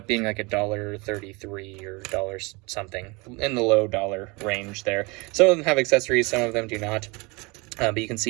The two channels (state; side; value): quieter; left; 26.7 dB